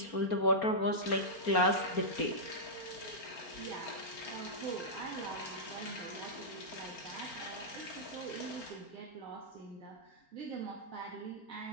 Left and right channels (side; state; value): right; late; 4.4 ms